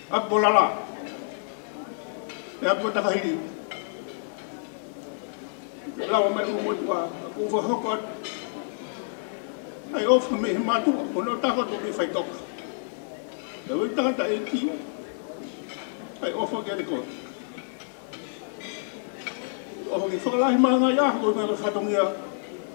Hapu ko lala. E hapu ko takahiri. Lawa mai umotua, ko whahoko atu. Ai ofa me he matua, ko no tako to me whai toka. E wai tangata e ki, ai ofa ke te koe. Ofa ki whakalahi maa ngai aha, ko ngā whatongia,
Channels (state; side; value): silent; right; digital silence